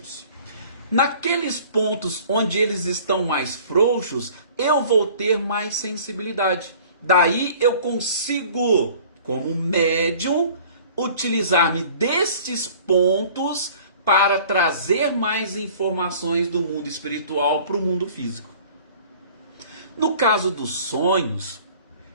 Naqueles pontos onde eles estão mais frouxos, eu vou ter mais sensibilidade. Daí eu consigo, como médium, utilizar-me destes pontos para trazer mais informações do mundo espiritual para o mundo físico. No caso dos sonhos,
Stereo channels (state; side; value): inverted; both; correlation -0.50